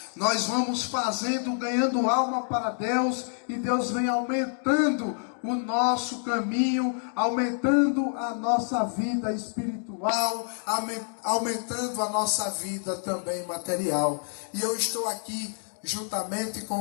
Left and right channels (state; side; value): silent; right; 60 dB below the other